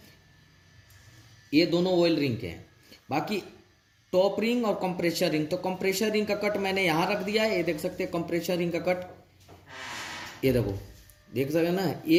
ये दोनों ऑयल रिंग के हैं। बाकी टॉप रिंग और कंप्रेशर रिंग, तो कंप्रेशर रिंग का कट मैंने यहां रख दिया है। ये देख सकते हैं कंप्रेशर रिंग का कट, ये देखो, देख सकते ना,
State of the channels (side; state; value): both; identical; correlation 1.00